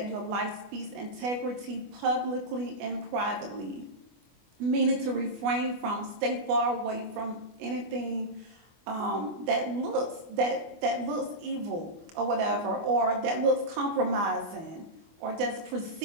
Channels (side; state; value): left; late; 25 ms